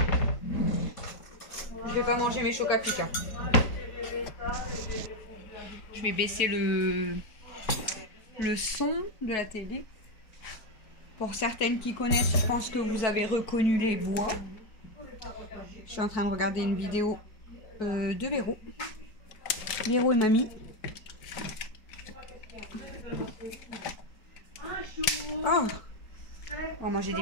Je vais pas manger mes chocs à pic. Je vais baisser le son de la télé. Pour certaines qui connaissent, je pense que vous avez reconnu les voix. Je suis en train de regarder une vidéo de Véro. Véro et mamie. Oh, on va manger des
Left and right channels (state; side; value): late; right; 4.5 ms